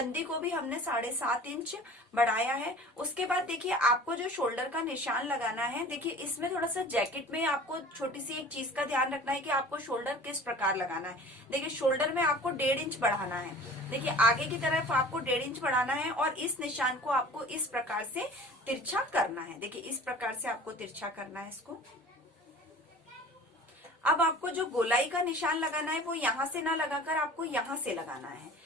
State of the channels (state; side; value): normal; both; correlation 0.43